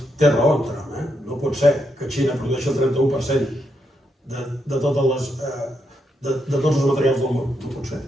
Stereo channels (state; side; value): normal; both; correlation 0.81